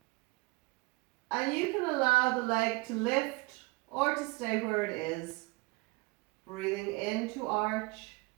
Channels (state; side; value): quieter; left; 25.2 dB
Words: And you can allow the leg to lift or to stay where it is. Breathing in to arch,